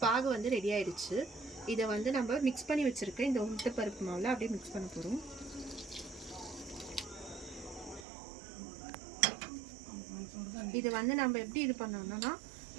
பாகு வந்து ரெடி ஆயிடுச்சு. இதை வந்து நம்ம மிக்ஸ் பண்ணி வச்சிருக்க இந்த உளுத்தப்பருப்பு மாவில் அப்படியே மிக்ஸ் பண்ண போகிறோம். இது வந்து நம்ம எப்படி இது பண்ணணும்னா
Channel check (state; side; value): drops out; left; at 8.1 s